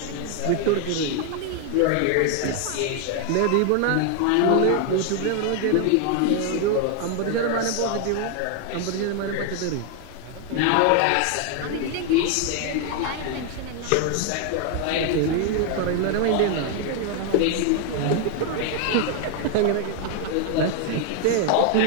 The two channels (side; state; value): both; different; correlation 0.00